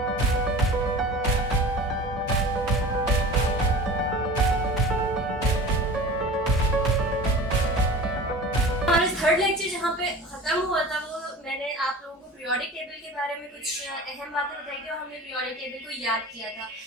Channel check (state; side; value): normal; both; correlation 0.37